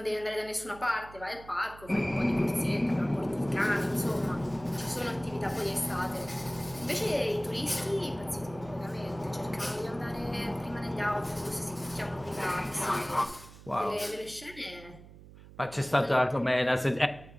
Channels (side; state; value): right; noise; hum, 19 dB below the sound